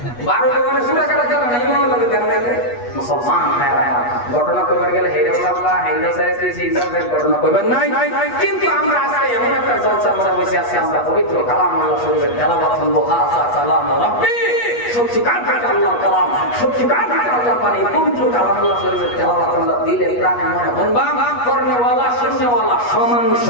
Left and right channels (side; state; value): right; late; 8.3 ms